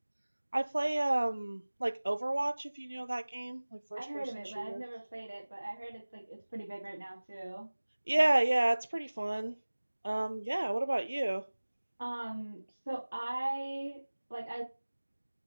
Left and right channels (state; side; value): inverted; both; correlation -1.00